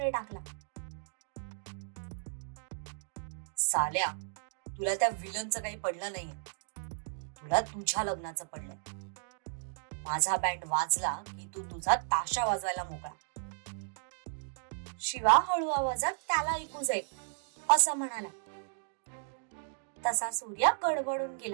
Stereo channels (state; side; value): silent; left; digital silence